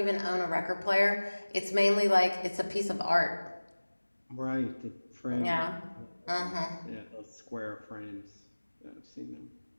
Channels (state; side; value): inverted; both; correlation -1.00